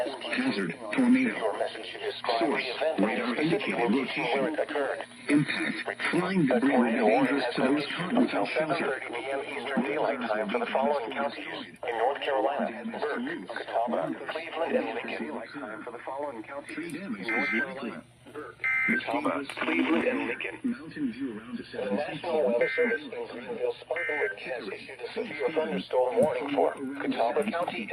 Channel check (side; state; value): both; identical; correlation 1.00